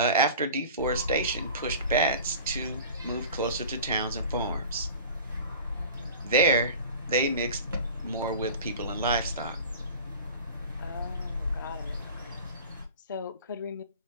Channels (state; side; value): inverted; both; correlation -0.39